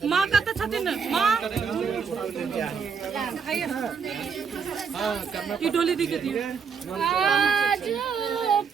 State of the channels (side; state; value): left; quieter; 6.1 dB